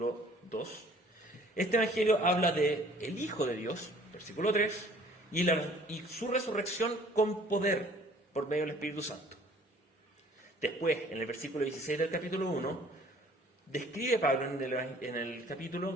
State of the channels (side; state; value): both; normal; correlation 0.54